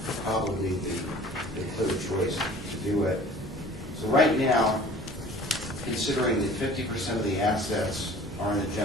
probably the clear choice to do it. So right now, considering that 50% of the assets are in the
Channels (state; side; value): normal; both; correlation 0.47